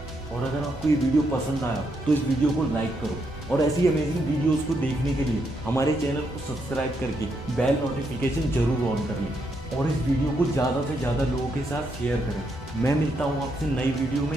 और अगर आपको ये वीडियो पसंद आया तो इस वीडियो को लाइक करो और ऐसी अमेजिंग वीडियोस को देखने के लिए हमारे चैनल को सब्सक्राइब करके बेल नोटिफिकेशन जरूर ऑन कर लें और इस वीडियो को ज़्यादा से ज़्यादा लोगों के साथ शेयर करें। मैं मिलता हूँ आपसे नई वीडियो में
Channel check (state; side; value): normal; both; correlation 0.78